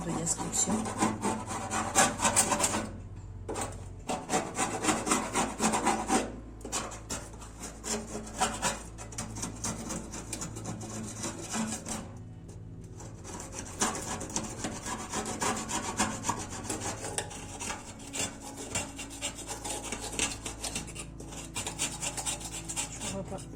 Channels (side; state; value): both; identical; correlation 1.00